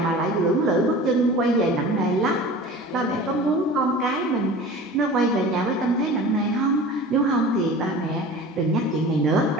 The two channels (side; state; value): both; normal; correlation 0.38